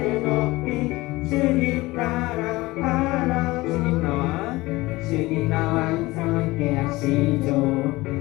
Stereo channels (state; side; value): quieter; right; 20.3 dB